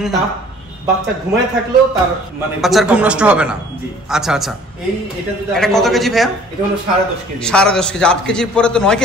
তার বাচ্চা ঘুমায় থাকলেও তার মানে বাচ্চার ঘুম নষ্ট হবে না। জি আচ্ছা আচ্ছা। এটা কত কেজি ভাইয়া? এটা হলো ১০.৫ কেজি। ১০.৫ কেজি। ৮ কেজির পরে তো ৯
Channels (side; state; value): both; normal; correlation 0.52